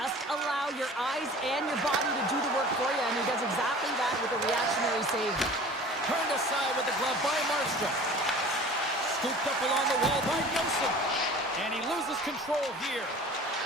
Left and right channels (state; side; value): normal; both; correlation 0.43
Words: allow your eyes and your body to do the work for you. And he does exactly that with a reactionary save. Turned aside with the glove by Markstrom. Scooped up along the wall by Nelson. And he loses control here.